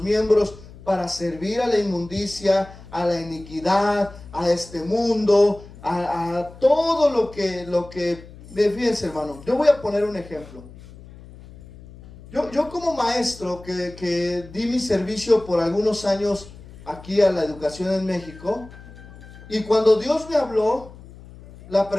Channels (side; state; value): left; noise; hum, 19 dB below the sound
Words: miembros para servir a la inmundicia, a la iniquidad, a este mundo, a todo lo que... Fíjense, hermano, yo voy a poner un ejemplo. Yo como maestro que di mi servicio por algunos años aquí a la educación en México, y cuando Dios me habló, la